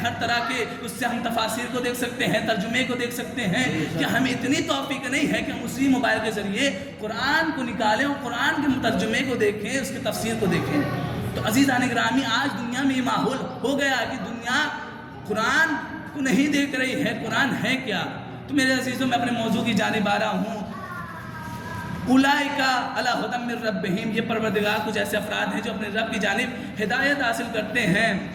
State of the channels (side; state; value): both; identical; correlation 1.00